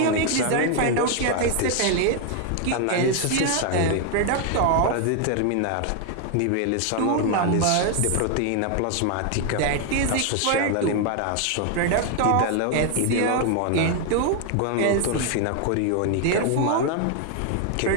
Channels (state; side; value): different; both; correlation 0.00